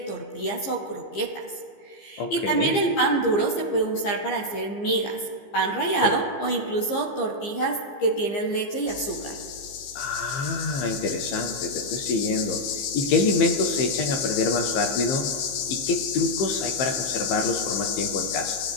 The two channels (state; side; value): late; right; 15 ms